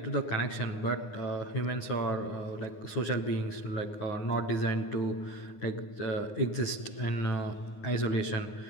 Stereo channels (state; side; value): late; right; 9.7 ms